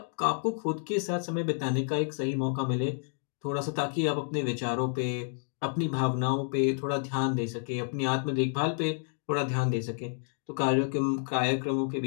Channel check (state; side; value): silent; right; digital silence